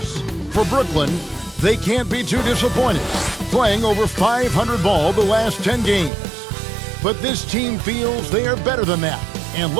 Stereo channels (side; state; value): left; drops out; at 6.1 s